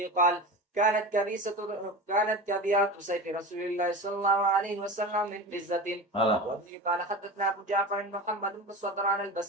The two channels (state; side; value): normal; both; correlation 0.29